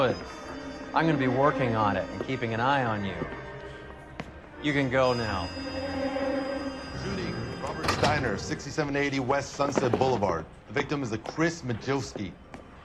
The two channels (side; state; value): both; identical; correlation 1.00